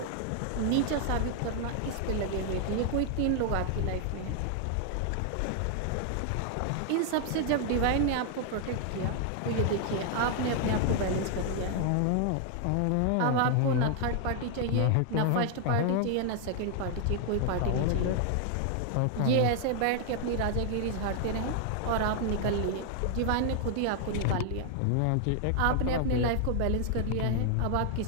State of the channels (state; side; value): different; both; correlation 0.00